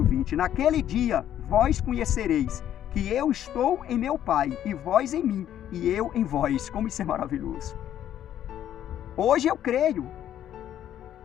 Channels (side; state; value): right; quieter; 11.0 dB